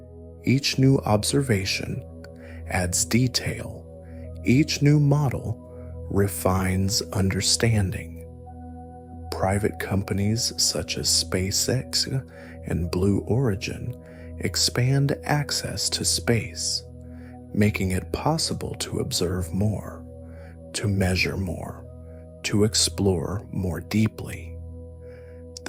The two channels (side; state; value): both; identical; correlation 1.00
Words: Each new observation adds detail. Each new model refines understanding. Private companies such as SpaceX and Blue Origin expand access to space, making it possible to observe more, to measure more, to explore more deeply.